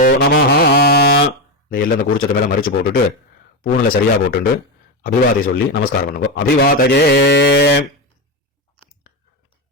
நமஹா. இந்த எள்ளு அந்த கூர்ச்சத்தை மேலே மறிச்சு போட்டுட்டு பூனில் சரியா போட்டுண்டு அபிவாதை சொல்லி நமஸ்காரம் பண்ணுங்க. அபிவாதையே.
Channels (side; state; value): both; normal; correlation 0.14